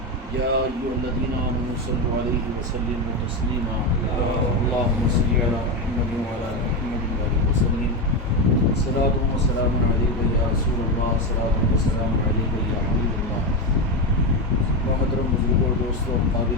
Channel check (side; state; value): both; normal; correlation 0.13